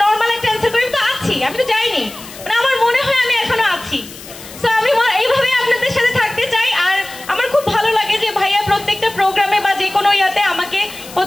নর্মাল একটা অ্যান্সার করি, তো আছি, আমি তো যাইনি, মানে আমার মনে হয় আমি এখনো আছি। সো আমি এইভাবে আপনাদের সাথে থাকতে চাই। আর আমার খুব ভালো লাগে যে ভাইয়া প্রত্যেকটা প্রোগ্রামে বা যে কোনো ইয়াতে আমাকে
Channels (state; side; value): noise; left; hiss, 16 dB below the sound